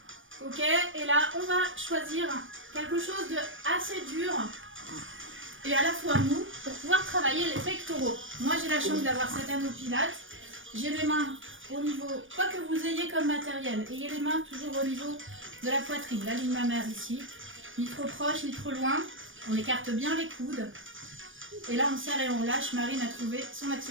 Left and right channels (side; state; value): left; late; 0.57 ms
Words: Ok, et là on va choisir quelque chose de assez dur et à la fois mou pour pouvoir travailler les pectoraux. Moi j'ai la chance d'avoir cet anneau Pilates. J'ai les mains au niveau, quoi que vous ayez comme matériel, ayez les mains toujours au niveau de la poitrine, la ligne mammaire ici. Ni trop proche, ni trop loin. On écarte bien les coudes. Et là on serre et on lâche. Marine a trouvé son